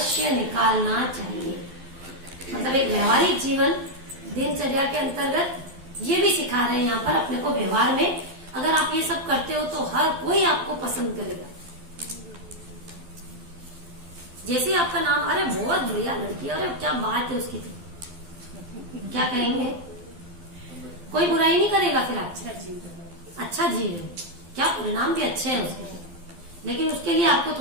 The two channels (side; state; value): left; late; 12 ms